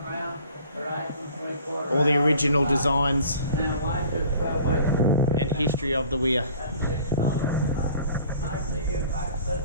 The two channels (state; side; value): inverted; both; correlation -0.50